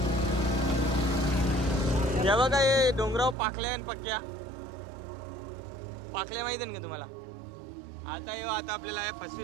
या बघा हे डोंगराव पाखल्या आणि पक्क्या. पाखल्या माहिती आहे का तुम्हाला? आता येऊ आता आपल्याला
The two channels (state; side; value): drops out; left; at 3.4 s